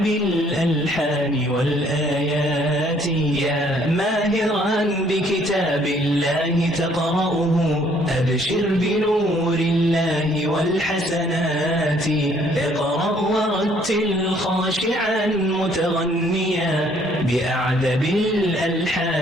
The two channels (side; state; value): both; normal; correlation 0.63